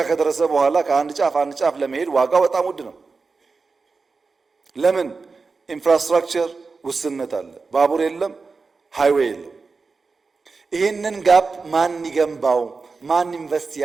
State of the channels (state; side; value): quieter; left; 4.4 dB